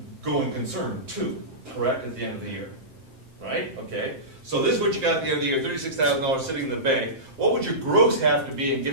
going concern too, correct, at the end of the year, right? Okay. So this is what you got at the end of the year, $36,000 sitting in the bank. What would your gross have to be in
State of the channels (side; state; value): left; late; 7.6 ms